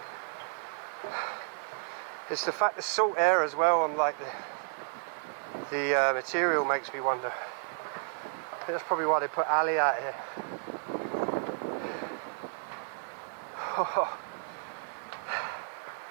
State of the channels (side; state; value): left; silent; digital silence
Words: It's the fact the salt air as well on like the material makes me wonder. I think that's probably why they put Ali out here.